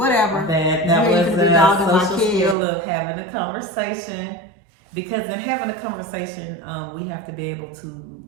That was a social skill of having a conversation. Because in having a conversation, we have to be able to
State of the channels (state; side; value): drops out; left; at 2.6 s